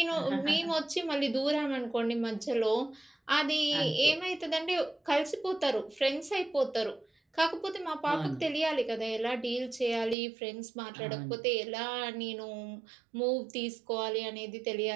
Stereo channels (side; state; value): left; drops out; at 10.2 s